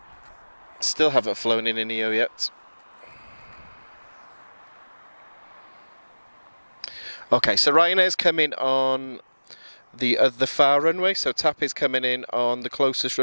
Still haven't flown in a neo yet. Okay, so Ryanair's coming on the far runway. So TAP is coming in on the closest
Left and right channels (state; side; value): inverted; both; correlation -1.00